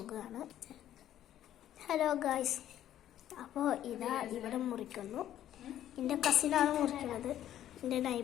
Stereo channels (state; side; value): quieter; right; 11.8 dB